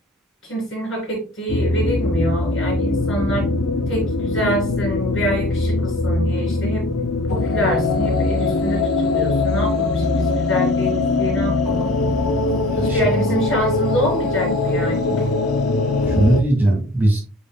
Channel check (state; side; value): normal; both; correlation 0.46